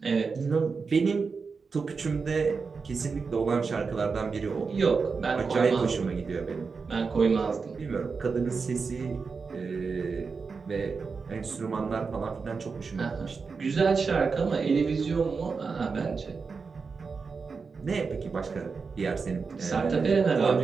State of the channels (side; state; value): left; quieter; 5.0 dB